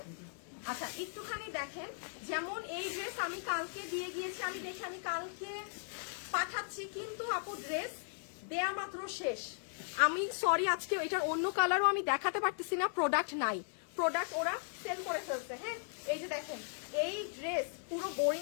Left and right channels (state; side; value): silent; right; digital silence